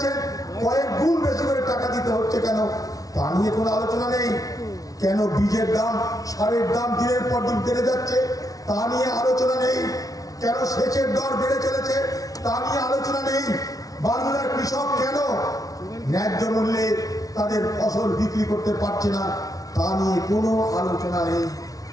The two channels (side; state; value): right; late; 0.18 ms